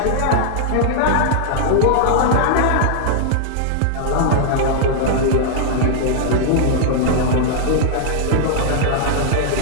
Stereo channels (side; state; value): both; different; correlation -0.01